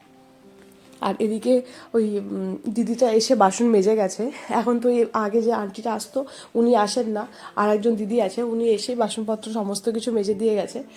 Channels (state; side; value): identical; both; correlation 1.00